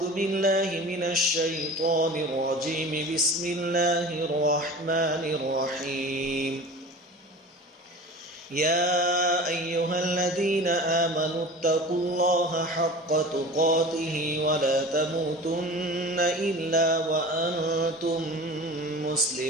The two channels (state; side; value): normal; both; correlation 0.37